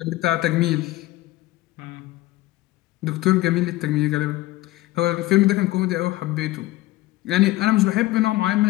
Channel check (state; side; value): quieter; right; 17.8 dB